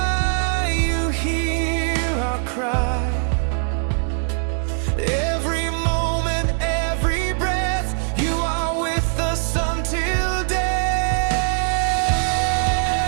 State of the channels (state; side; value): silent; left; 65 dB below the other